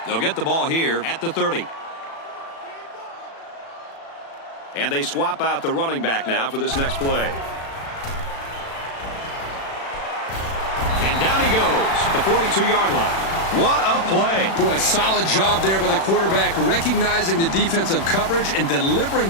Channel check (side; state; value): right; late; 36 ms